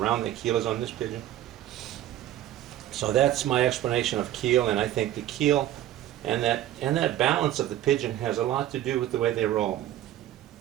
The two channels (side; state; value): left; quieter; 12.9 dB